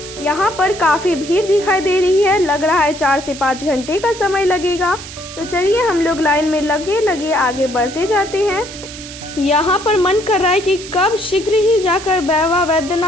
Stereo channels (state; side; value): noise; right; hiss, 13 dB below the sound